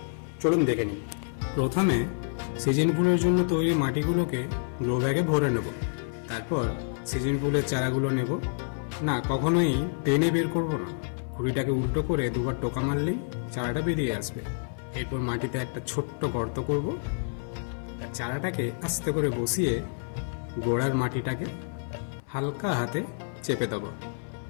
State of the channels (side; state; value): right; silent; 59 dB below the other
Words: চলুন দেখে নিই। প্রথমে সিজন ফুলের জন্য তৈরি মাটিগুলোকে গ্রো ব্যাগে ভরে নেব। তারপর সিজন ফুলের চারাগুলো নেব। না, কখনোই টেনে বের করব না, খুঁড়িটাকে উল্টো করে দুবার টোকা মারলেই চারাটা বেরিয়ে আসবে। এরপর মাটিতে একটা ছোট্ট গর্ত করব আর চারাটাকে আস্তে করে বসিয়ে গোড়ার মাটিটাকে হালকা হাতে চেপে দেব।